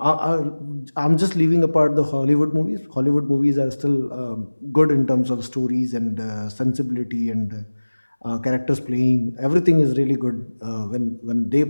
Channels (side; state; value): both; inverted; correlation -1.00